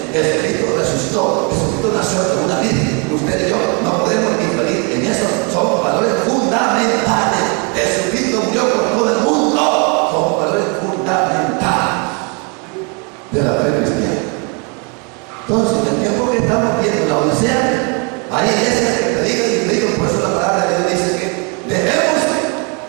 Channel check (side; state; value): left; quieter; 33.6 dB